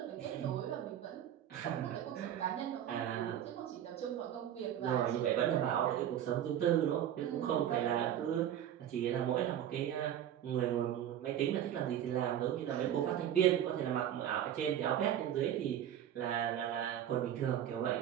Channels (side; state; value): left; quieter; 10.7 dB